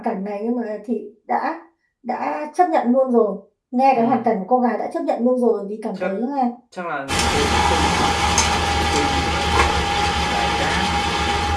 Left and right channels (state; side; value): identical; both; correlation 1.00